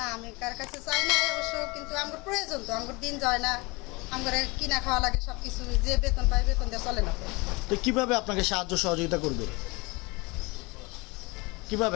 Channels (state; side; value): quieter; right; 25.9 dB